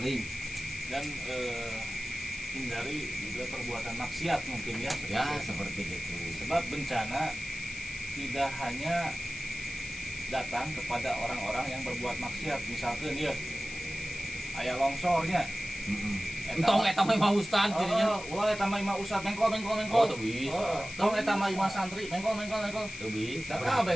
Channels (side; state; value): left; noise; hiss, 12 dB below the sound